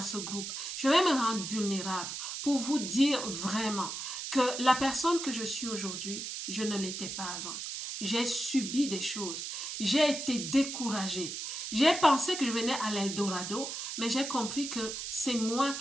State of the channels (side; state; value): right; noise; hiss, 6 dB below the sound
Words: ce groupe. Je vais me rendre vulnérable pour vous dire vraiment que la personne que je suis aujourd'hui, je ne l'étais pas avant. J'ai subi des choses. J'ai été découragée. J'ai pensé que je venais à l'Eldorado, mais j'ai compris que c'est moi